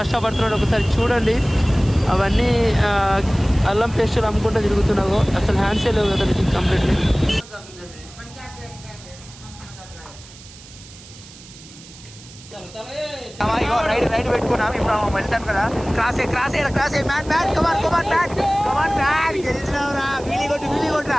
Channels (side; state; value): right; noise; hiss, 20 dB below the sound